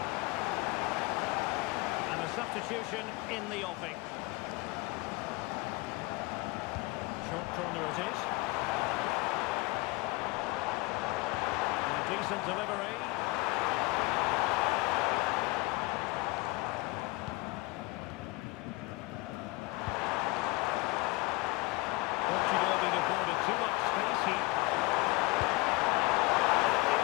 And a substitution in the offing. Short corner it is. Decent delivery. Portugal being afforded too much space here.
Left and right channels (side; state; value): right; quieter; 23.8 dB